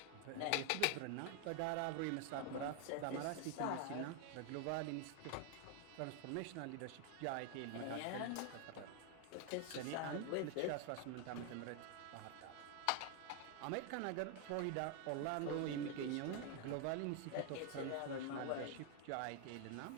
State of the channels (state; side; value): different; both; correlation 0.01